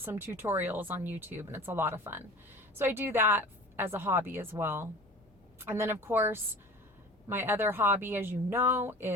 tutorials on YouTube, and it's a lot of fun. So I do that as a hobby as well. And then of course, my other hobby, as you know,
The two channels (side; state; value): both; normal; correlation 0.40